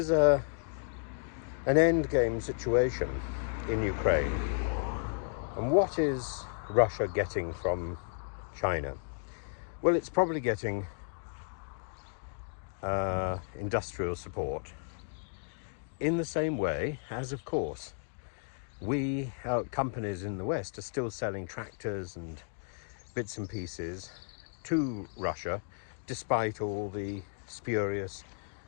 an endgame situation in Ukraine. And what is Russia getting from China? Well, it's probably getting industrial support in the same way as, of course, companies in the West are still selling tractors and bits and pieces to Russia, despite all the spurious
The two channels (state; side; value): silent; right; digital silence